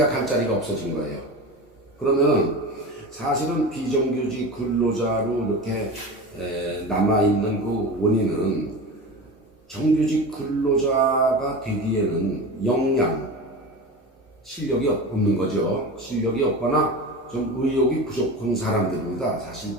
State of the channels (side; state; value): both; normal; correlation 0.29